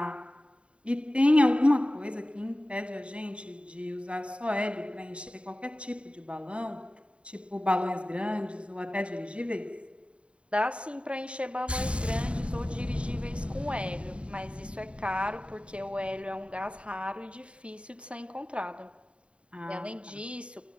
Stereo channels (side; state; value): left; late; 0.059 ms